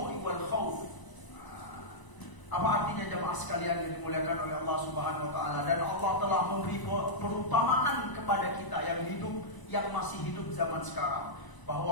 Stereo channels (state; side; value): late; right; 1.0 ms